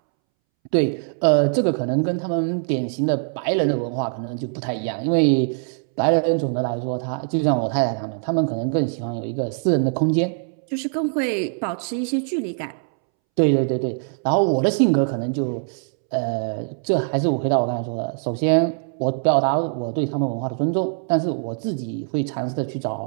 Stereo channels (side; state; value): left; silent; 64 dB below the other